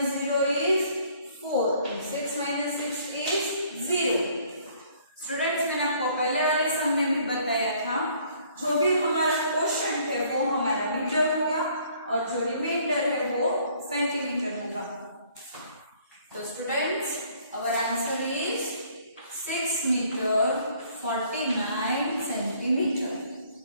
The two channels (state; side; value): inverted; both; correlation -0.61